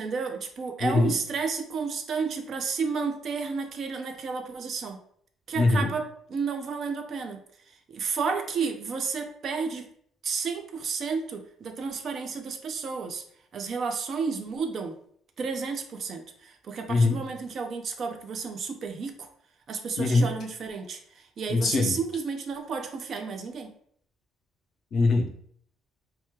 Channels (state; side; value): normal; both; correlation 0.78